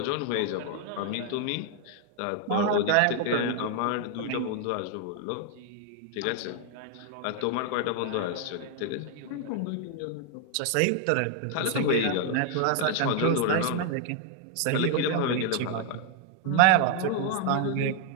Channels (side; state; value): both; different; correlation 0.00